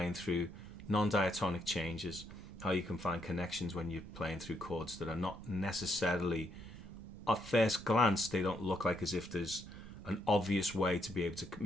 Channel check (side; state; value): right; noise; rumble, 16 dB below the sound